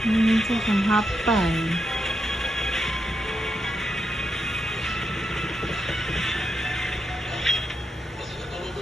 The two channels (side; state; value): both; normal; correlation 0.84